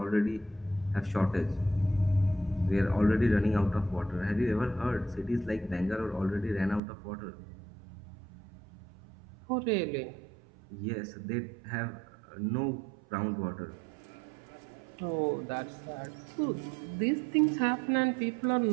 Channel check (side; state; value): left; drops out; at 6.8 s